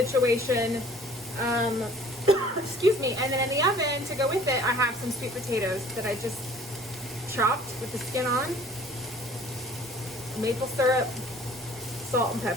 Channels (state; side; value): normal; both; correlation 0.51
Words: Excuse me. And then in the oven to go with it, I have some sweet potatoes that I just chopped with the skin on, maple syrup, salt and